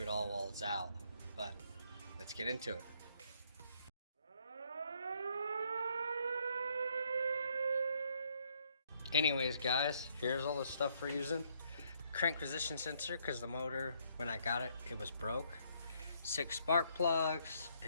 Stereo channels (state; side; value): inverted; both; correlation -0.70